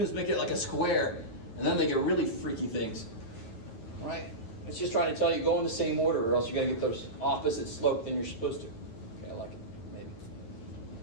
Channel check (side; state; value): right; late; 8.9 ms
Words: make it like a square, and then they get really freaky things. Right? It's just trying to tell you go in the same order, or else you're going to get those opposite slope than you're supposed to. Okay, I like it. Maybe.